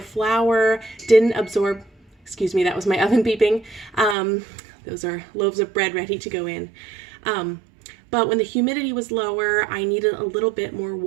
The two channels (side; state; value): left; drops out; at 4.2 s